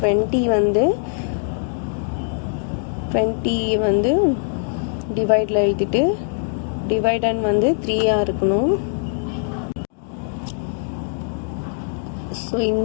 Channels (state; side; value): silent; right; digital silence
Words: 20 வந்து டிவைடில் எழுதிட்டு டிவைடன் வந்து 3ஆக இருக்கணும். ஸோ